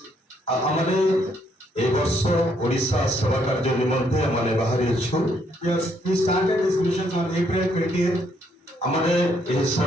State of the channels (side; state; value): both; normal; correlation 0.71